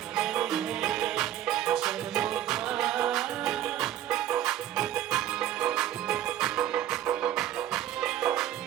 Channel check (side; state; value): left; quieter; 11.8 dB